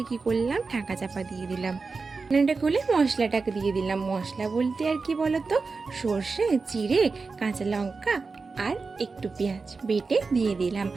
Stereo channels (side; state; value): left; quieter; 4.3 dB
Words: কি করলাম, ঢাকা চাপা দিয়ে দিলাম। রান্নাটা খুলে মশলাটাকে দিয়ে দিলাম। মশলা বলতে আর কি বলো তো, সর্ষে, জিরে, কাঁচা লঙ্কা আর একটু পেঁয়াজ বেটে দিয়ে দিলাম।